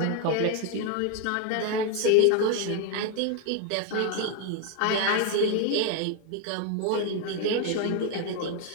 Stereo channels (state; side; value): different; both; correlation 0.01